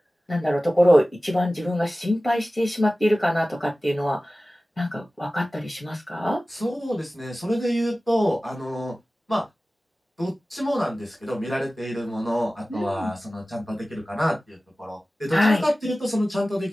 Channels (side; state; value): both; normal; correlation 0.97